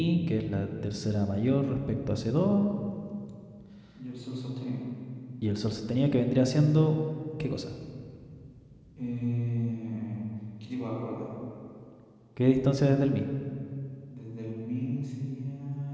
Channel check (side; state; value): both; identical; correlation 1.00